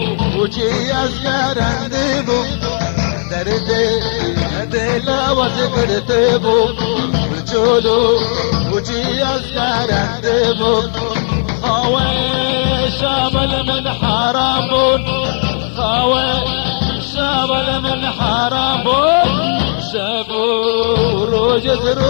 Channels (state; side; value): silent; right; digital silence